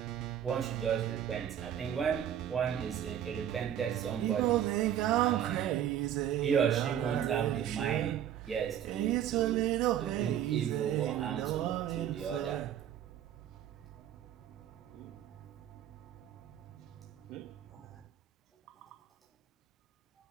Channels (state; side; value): quieter; left; 10.3 dB